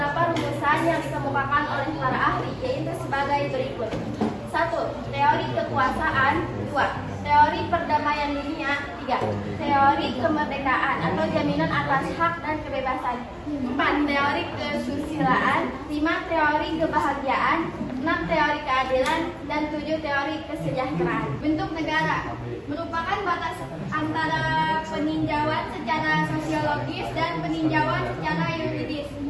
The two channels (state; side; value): identical; both; correlation 1.00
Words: rumusan yang dikemukakan oleh para ahli, yaitu sebagai berikut. 1. Teori kekuasaan. 2. Teori perdamaian dunia. 3. Teori teori kemerdekaan atau jaminan atas hak dan kebebasan. 4. Teori kesusilaan. 5. Teori kebahagiaan. 6. Teori keadilan. Dan 7. Teori kesejahteraan. Bentuk negara merupakan batas antara peninjauan secara sosiologis dan peninjauan secara yuridis